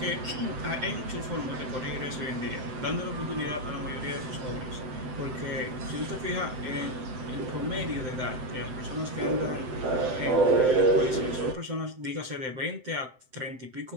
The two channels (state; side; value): late; left; 7.8 ms